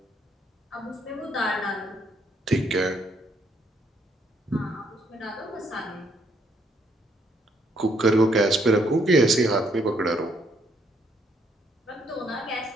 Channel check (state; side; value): normal; both; correlation 0.70